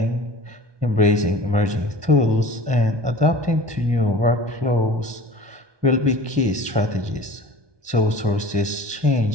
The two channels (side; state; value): left; late; 1.2 ms